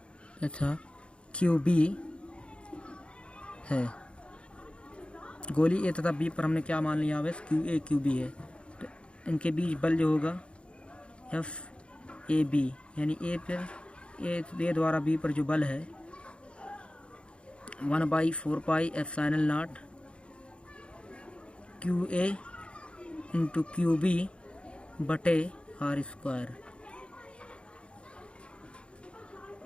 QB है। गोली ए तथा बी पर हमने क्या मान लिया, आवेश QA QB है। तो इनके बीच बल जो होगा FAB, यानी ए द्वारा बी पर जो बल है 1/4πε0 QA × QB बटे r²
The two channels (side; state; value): right; late; 0.057 ms